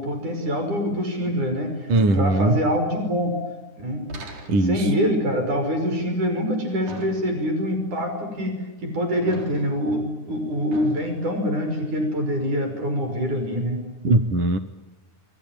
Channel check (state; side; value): late; left; 9.8 ms